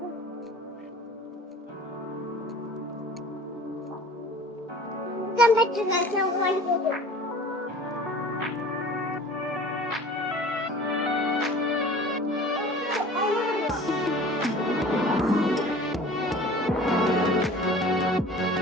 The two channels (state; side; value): normal; both; correlation 0.44